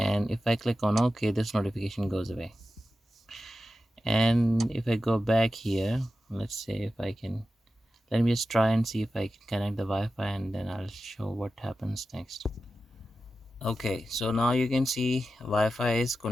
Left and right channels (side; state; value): both; normal; correlation 0.92